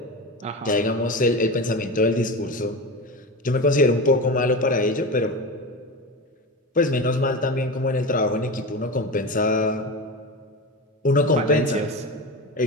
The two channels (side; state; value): both; normal; correlation 0.24